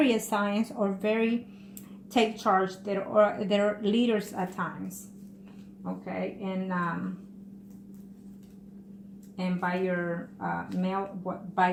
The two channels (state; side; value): identical; both; correlation 1.00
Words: signs are very take charge. They're leaders at times. Okay, and